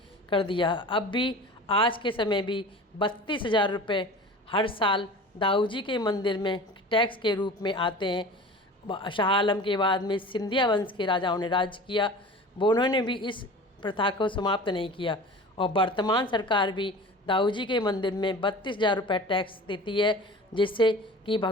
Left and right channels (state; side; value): normal; both; correlation 0.38